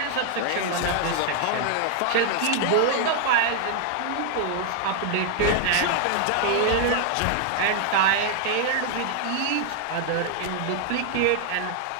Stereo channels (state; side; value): different; both; correlation 0.00